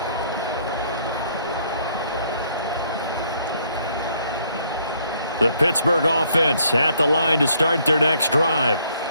The Pittsburgh offense at the line to start their next drive.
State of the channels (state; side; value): inverted; both; correlation -0.66